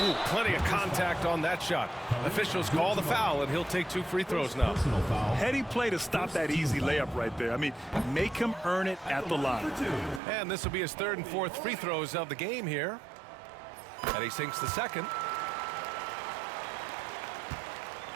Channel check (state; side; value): drops out; left; at 10.2 s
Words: Ooh, plenty of contact on that shot. Officials call the foul, and he'll take 2 free throws now. Heady play to stop that easy layup right there. I mean, make him earn it at the line. And this will be his 3rd and 4th free throws of the game here. And he sinks the second.